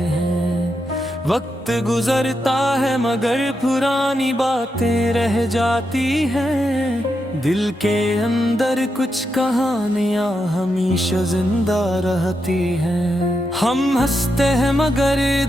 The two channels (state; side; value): normal; both; correlation 0.85